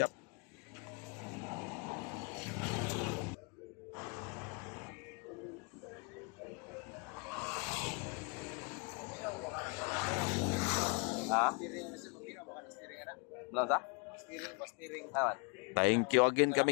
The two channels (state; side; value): quieter; right; 33.8 dB